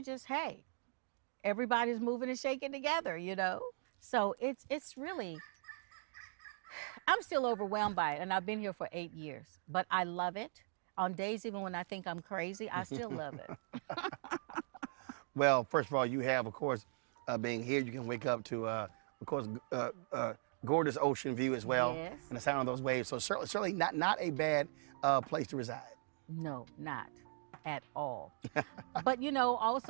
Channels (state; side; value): silent; left; digital silence